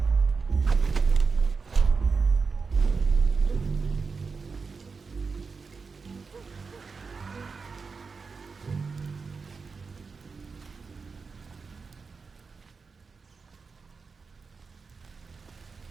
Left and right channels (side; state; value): left; quieter; 4.8 dB